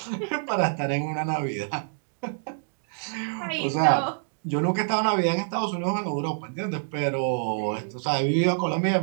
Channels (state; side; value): silent; left; digital silence